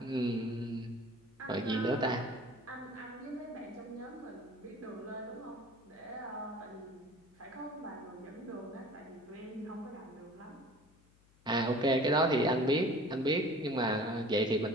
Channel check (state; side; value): noise; left; hum, 30 dB below the sound